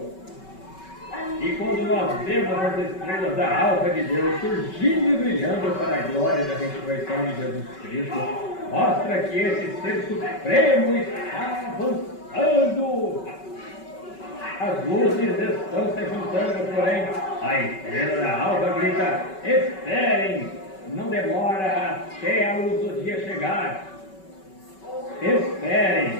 E quando nós vemos as estrelas da alva de Deus surgindo e brilhando para a glória da ressurreição de Jesus Cristo, mostra que esse ser supremo está avançando. As luzes estão se juntando, porém a estrela da alva grita: esperem! Não demora até a luz do dia chegar.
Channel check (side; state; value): right; late; 5.3 ms